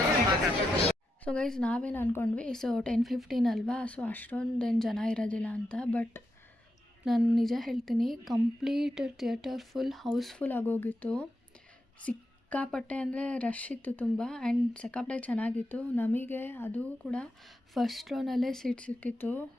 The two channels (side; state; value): both; normal; correlation 0.86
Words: ಮಾತಾಡ್ತೀವಿ. ಸೊ ಗೈಸ್ ನಾವೇನು ಅಂದ್ಕೊಂಡ್ವಿ, ಸೊ 10-15 ಅಲ್ವಾ, ಸೊ ಅಷ್ಟೊಂದೇನು ಜನ ಇರೋದಿಲ್ಲ ಅಂತ. ಬಟ್ ನಾನು ನಿಜ ಹೇಳ್ತೀನಿ, ಕಂಪ್ಲೀಟ್ ಥಿಯೇಟರ್ ಫುಲ್ ಹೌಸ್ಫುಲ್ ಆಗೋಗಿತ್ತು. ಸಿಕ್ಕಾಪಟ್ಟೆ ಅಂದರೆ ರಶ್ ಇತ್ತು ತುಂಬ. ಆ್ಯಂಡ್ ಸಿಕ್ಕಾಪಟ್ಟೆ ಚೆನ್ನಾಗಿತ್ತು. ನಮಗೆ ಅದು ಕೂಡ ಫಸ್ಟ್ ರೋನಲ್ಲೇ ಸೀಟ್ ಸಿಕ್ಕಿತ್ತು.